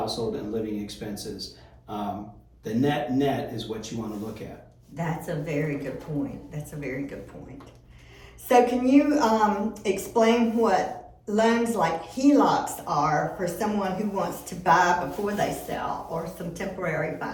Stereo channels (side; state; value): both; identical; correlation 1.00